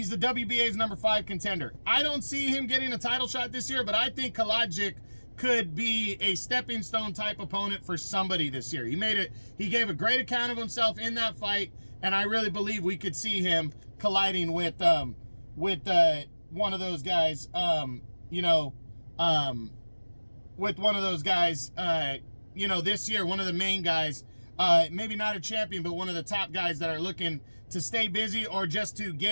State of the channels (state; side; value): inverted; both; correlation -1.00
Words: the WBA's number 5 contender. I don't see him getting a title shot this year, but I think Kalajic could be a stepping stone type opponent for somebody this year. He gave a great account of himself in that fight, and I really believe we could see him colliding with one of those guys, this year, one of the main guys, maybe not a champion, but one of the top guys that are looking to stay busy or just to